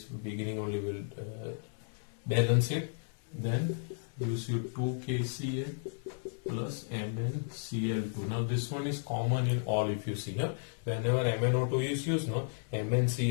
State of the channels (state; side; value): silent; right; 55 dB below the other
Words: beginning only will balance it, then use your 2 KCl plus MnCl2. Now this one is common in all, if you see here, whenever MnO2 is used, no,